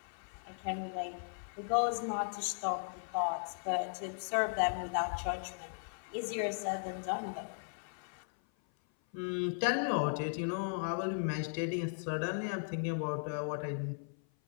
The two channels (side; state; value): right; silent; 53 dB below the other